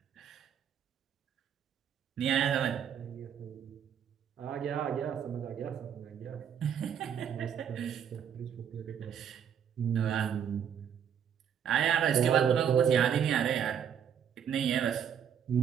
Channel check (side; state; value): left; quieter; 8.3 dB